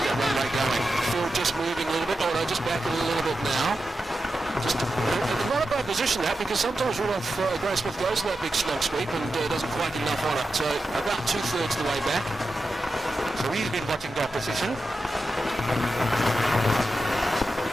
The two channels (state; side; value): normal; both; correlation 0.90